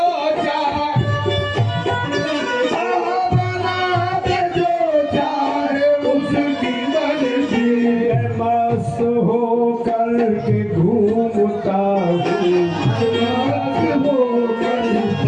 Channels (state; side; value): identical; both; correlation 1.00